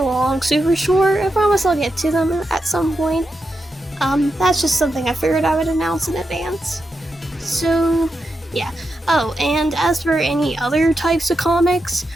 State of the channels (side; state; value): both; normal; correlation 0.87